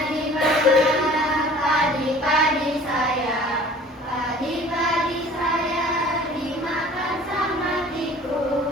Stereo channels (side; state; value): both; normal; correlation 0.48